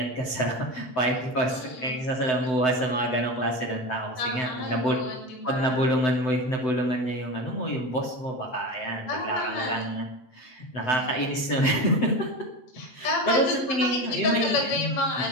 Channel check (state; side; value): late; right; 7.9 ms